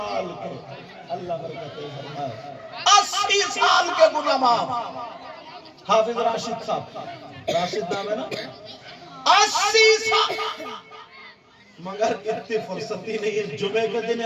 کے، اللہ برکت ہے، 80 سال کے گناہ معاف۔ حافظ راشد صاحب، راشد نام ہے نا، 80 سال، مگر اتنی فرصتی نہیں ہے، جمعے کے دن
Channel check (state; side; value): identical; both; correlation 1.00